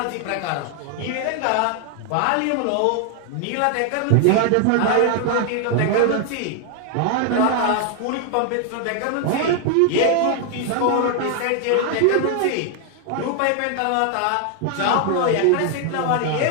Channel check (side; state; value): both; different; correlation 0.00